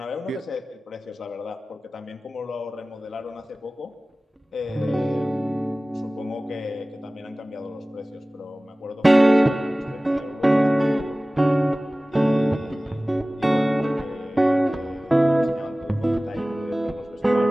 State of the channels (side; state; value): both; normal; correlation 0.98